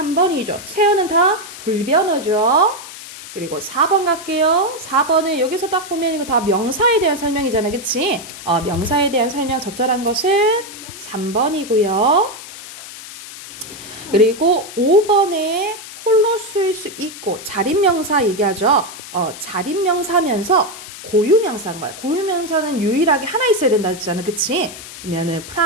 세어는 다 불변어죠. 그리고 4번 갈게요. 4번은 여기서 딱 보면 이거 다 명사에 대한 설명이잖아, 그치? 명사에 대한 설명 적절한 것은 3번이고요. 그리고 5번에 홀로 쓰일 수 있고 자립명사 얘기하죠. 자립명사면서 고유명사인 거야. 고유명사는 유일하게 하나 있어야 된다 했잖아, 그치? 그러면은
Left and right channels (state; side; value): noise; left; hiss, 14 dB below the sound